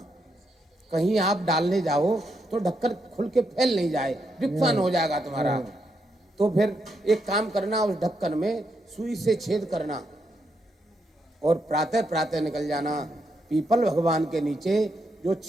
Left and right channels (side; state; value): both; normal; correlation 0.80